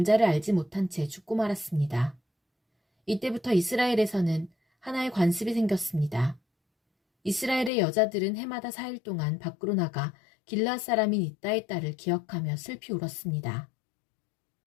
알지 못한 채 죽고 말았습니다. 이때부터 이스라엘에서는 하나의 관습이 생겼습니다. 이스라엘의 여자들은 해마다 4일 동안 밖으로 나가 길르앗 사람인 입다의 딸을 기억하며 슬피 울었습니다.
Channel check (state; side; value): drops out; right; at 7.7 s